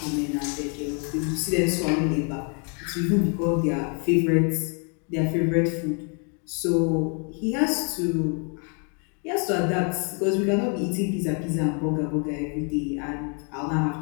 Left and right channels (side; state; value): right; quieter; 38.7 dB